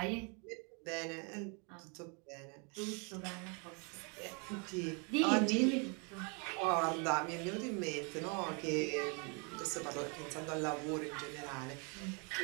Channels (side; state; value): left; quieter; 34.8 dB